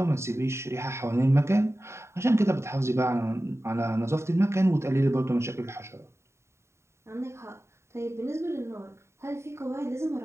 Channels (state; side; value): late; left; 0.13 ms